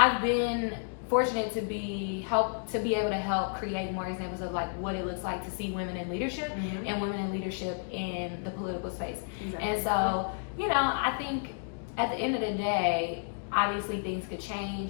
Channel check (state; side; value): silent; right; digital silence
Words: been fortunate to be able to help create more examples of like what it looks like to see women in leadership and women in leadership in the political space. And so I think at the end of the day, obviously things could